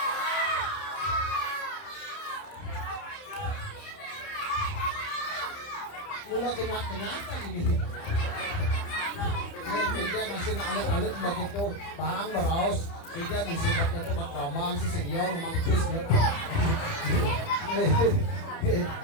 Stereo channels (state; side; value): late; right; 30 ms